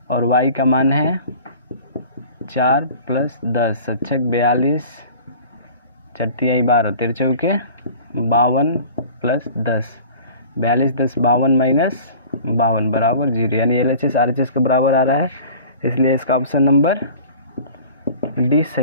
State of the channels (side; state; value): both; inverted; correlation -0.44